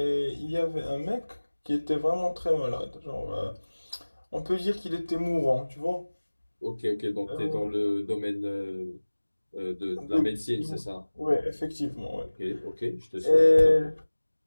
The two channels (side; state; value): both; inverted; correlation -1.00